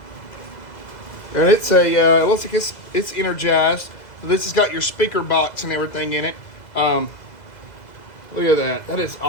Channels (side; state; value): right; late; 2.0 ms